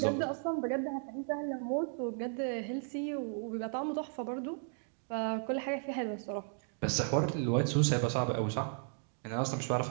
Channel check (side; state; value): left; silent; 54 dB below the other